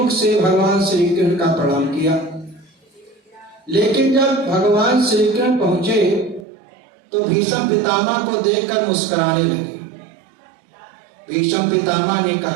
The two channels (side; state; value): left; drops out; at 6.5 s